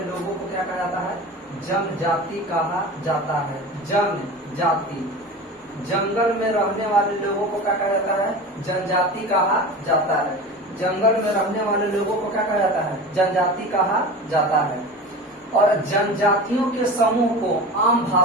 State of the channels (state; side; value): normal; both; correlation 0.32